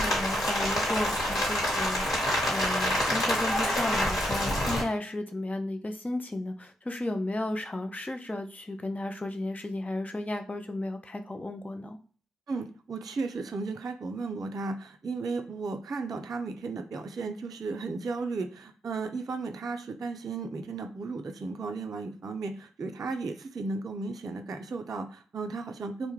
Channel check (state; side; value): normal; both; correlation 0.79